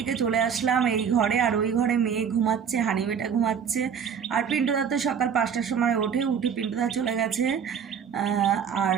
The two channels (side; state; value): left; quieter; 7.3 dB